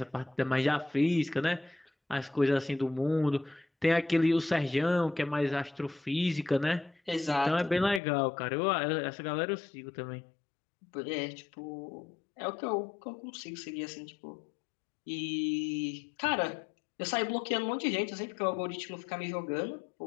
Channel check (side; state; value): right; drops out; at 8.0 s